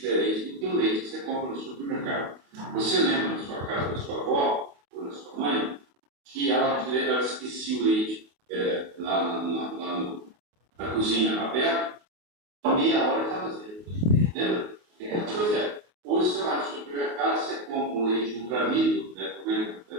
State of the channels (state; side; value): late; left; 28 ms